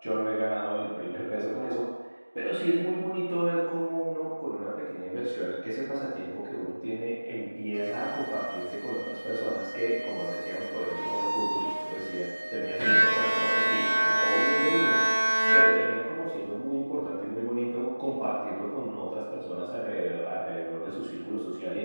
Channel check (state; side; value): inverted; both; correlation -1.00